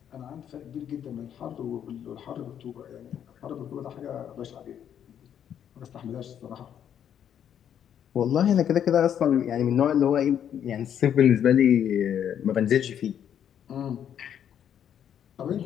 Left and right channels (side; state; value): right; quieter; 9.3 dB